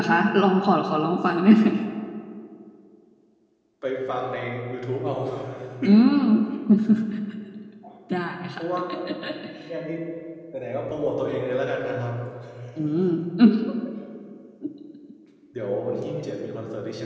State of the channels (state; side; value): identical; both; correlation 1.00